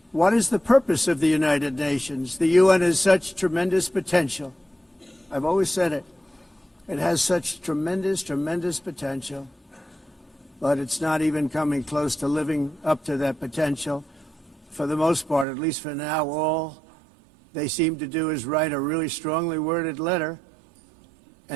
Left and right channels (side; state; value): left; drops out; at 15.5 s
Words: what is the purpose of the United Nations? The UN has such tremendous potential. I've always said it. It has such tremendous, tremendous potential, but it's not even coming close to living up to that potential. For the most part, at least for now, all they seem to do is write a really strongly worded letter